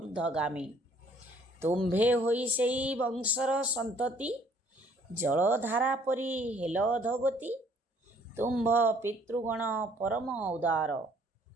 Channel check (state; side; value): normal; both; correlation 0.61